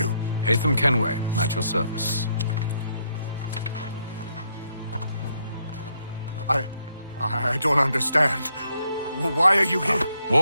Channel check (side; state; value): both; inverted; correlation -0.75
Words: Hatham Kenway, at your service. I don't understand. Why are you here?